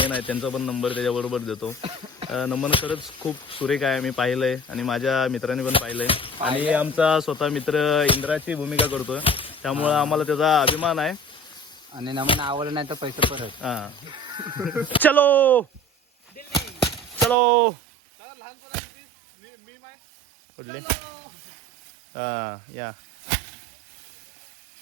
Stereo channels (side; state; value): left; drops out; at 17.4 s